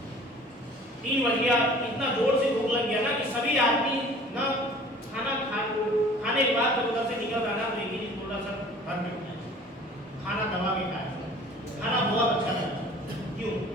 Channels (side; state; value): both; normal; correlation 0.48